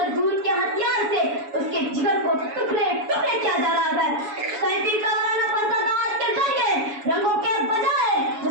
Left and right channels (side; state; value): left; late; 7.1 ms